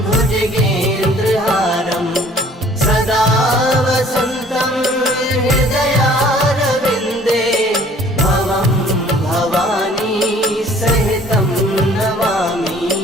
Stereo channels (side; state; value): both; normal; correlation 0.54